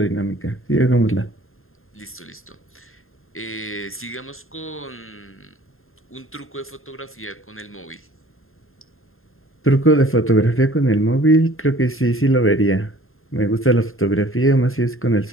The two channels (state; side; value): late; right; 0.61 ms